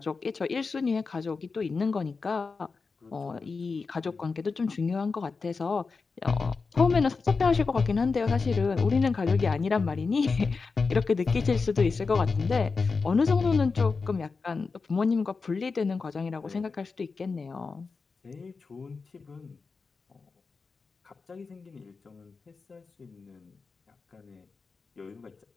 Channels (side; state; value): right; quieter; 4.6 dB